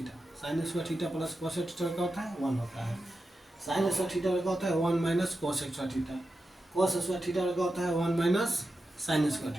sign square theta plus cos theta क्या होता है, 1 होता है। साइन स्क्वायर थीटा का होता है 1 minus cos square theta. Cos square theta का होता है 1 minus sine square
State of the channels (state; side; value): normal; both; correlation 0.90